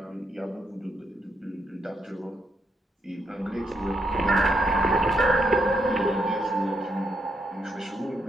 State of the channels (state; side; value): normal; both; correlation 0.78